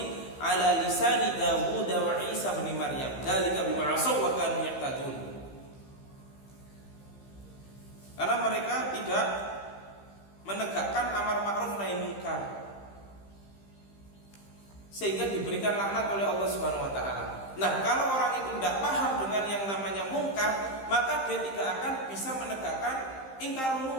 ala lisani Dawud wa Isa bin Maryam. Dzalika bima asaw wa kanu ya'tadun. Karena mereka tidak menegakkan amar ma'ruf nahi munkar sehingga diberikan laknat oleh Allah Subhanahu wa taala. Nah, kalau orang itu tidak paham dengan yang namanya mungkar, maka dia tidak akan bisa menegakkan ingkar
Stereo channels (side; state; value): right; late; 15 ms